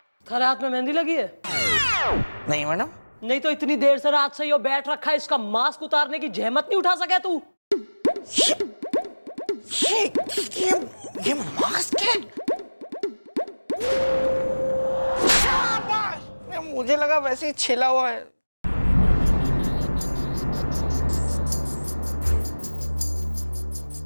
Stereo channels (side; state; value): both; inverted; correlation -1.00